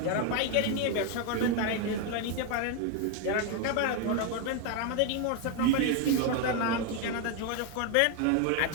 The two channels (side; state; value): both; different; correlation 0.01